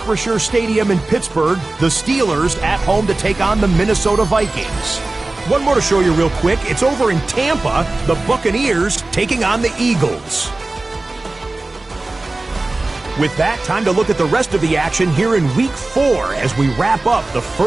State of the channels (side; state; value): left; quieter; 3.1 dB